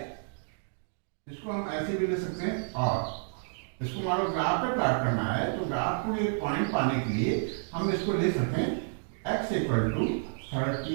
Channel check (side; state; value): left; silent; digital silence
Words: इसको हम ऐसे भी ले सकते हैं, और इसको मान लो ग्राफ पे प्लॉट करना है, तो ग्राफ को एक पॉइंट पाने के लिए हम इसको ले सकते हैं x equal to